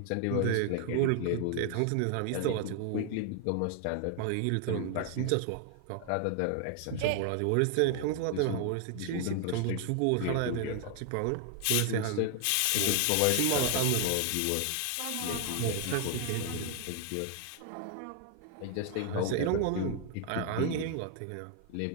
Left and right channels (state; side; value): different; both; correlation 0.00